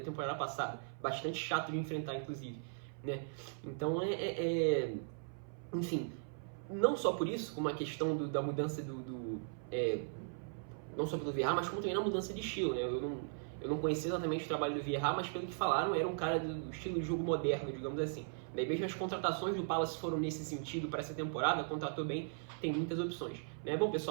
passada, bastante chato de enfrentar, inclusive, né? Então enfim, não só por isso, como a questão da mudança não só pelo Vieira, mas como também na mudança de estilo, né? Eu não conhecia exatamente o trabalho do Vieira, mas pelo que falaram, era um cara do estilo de jogo moderno, digamos assim. Daí mesmo as contratações do Palace foram nesse sentido para essa temporada, contratou bem, tem muitas opções, né? Bom,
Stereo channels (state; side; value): silent; left; 52 dB below the other